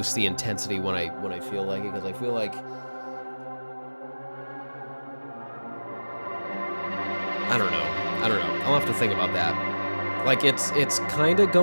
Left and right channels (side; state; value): both; inverted; correlation -1.00